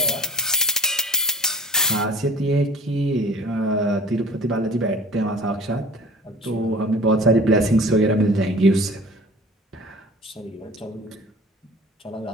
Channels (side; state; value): both; normal; correlation 0.45